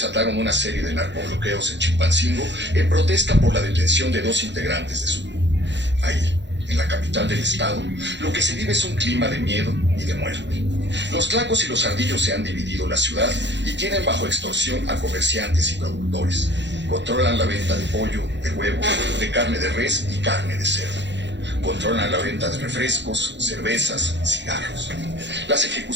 una serie de narcobloqueos en Chilpancingo en protesta por la detención de 2 integrantes de su grupo. Ahí, en la capital del estado, lo que se vive es un clima de miedo y de muerte. Los Tlacos y los Ardillos se han dividido la ciudad y tienen bajo extorsión a comerciantes y productores. Controlan la venta de pollo, de huevo, de carne de res y carne de cerdo. Controlan la venta de refrescos, cervezas, cigarros. Las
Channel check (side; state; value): left; late; 0.52 ms